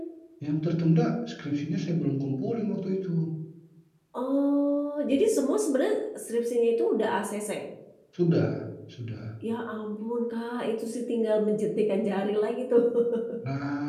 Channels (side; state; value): both; identical; correlation 1.00